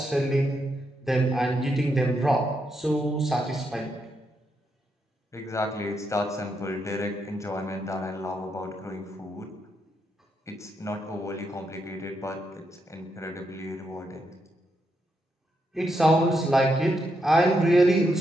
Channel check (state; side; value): normal; both; correlation 0.81